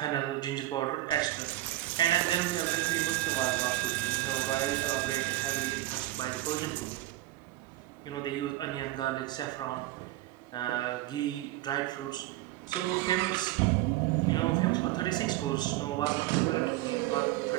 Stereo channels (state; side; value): quieter; left; 16.1 dB